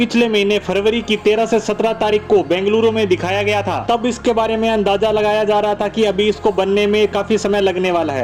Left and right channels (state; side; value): identical; both; correlation 1.00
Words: महीने फरवरी की 13 से 17 तारीख को बेंगलुरु में दिखाया गया था। तब इसके बारे में अंदाजा लगाया जा रहा था कि अभी इसको बनने में काफी समय लगने वाला